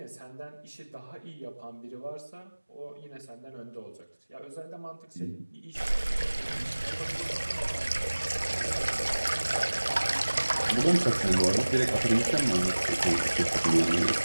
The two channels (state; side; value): inverted; both; correlation -1.00